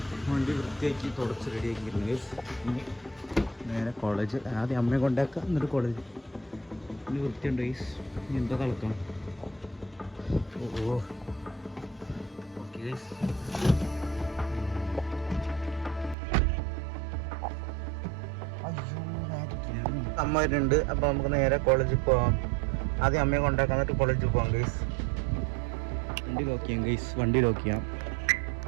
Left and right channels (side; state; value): left; drops out; at 16.2 s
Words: വണ്ടി വൃത്തിയാക്കി തുടച്ച് റെഡിയാക്കിയിരുന്നു ഗൈസ്. ഇനി നേരെ കോളേജ്. ആദ്യം അമ്മയെ കൊണ്ടാക്കുക, എന്നിട്ട് കോളേജ്. ഇനി വൃത്തിയുണ്ട് ഗൈസ്. ഇനി എന്താ കളക്കണം? ഓ ഓക്കെ ഗൈസ്. അമ്മ വരുന്നുണ്ട്. അപ്പോൾ നമുക്ക് നേരെ കോളേജിൽ പോവാം. ആദ്യം അമ്മയെ കൊണ്ടാക്കാം, എന്നിട്ട് കോളേജിൽ പോവാം ഗൈസ്. വണ്ടി ലോക്ക് ചെയ്യാം ഗൈസ്. വണ്ടി ലോക്ക് ചെയ്യാം.